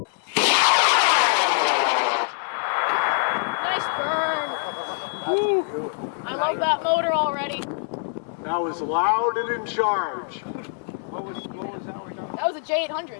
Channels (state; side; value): silent; right; 58 dB below the other